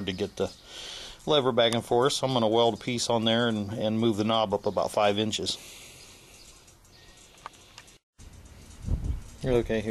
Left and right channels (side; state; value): both; identical; correlation 1.00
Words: to get the lever back and forth, so I'm going to weld a piece on there and move the knob up about 5 inches. Okay,